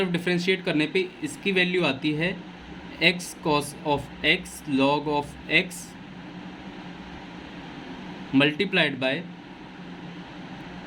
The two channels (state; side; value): identical; both; correlation 1.00